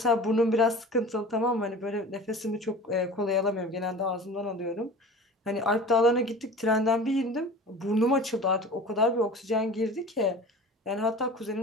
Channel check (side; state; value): both; normal; correlation 0.39